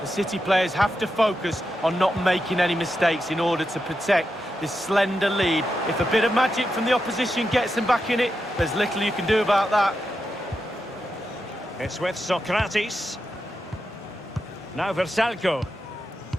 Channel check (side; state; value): both; normal; correlation 0.87